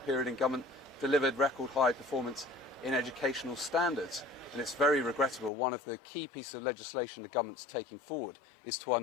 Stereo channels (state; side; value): drops out; right; at 5.5 s